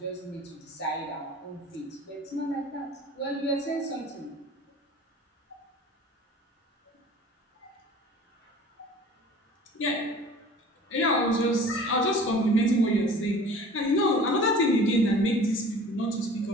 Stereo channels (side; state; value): both; normal; correlation 0.44